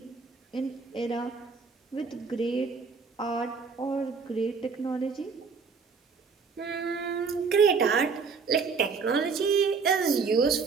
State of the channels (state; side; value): quieter; left; 5.1 dB